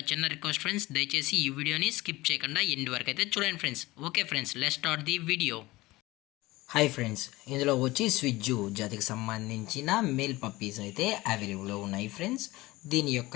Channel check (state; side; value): quieter; right; 19.7 dB